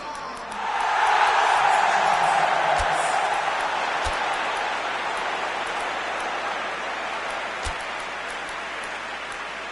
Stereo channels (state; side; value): noise; right; hum, 27 dB below the sound